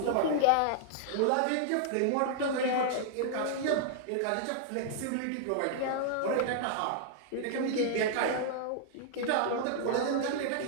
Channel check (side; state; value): both; different; correlation -0.01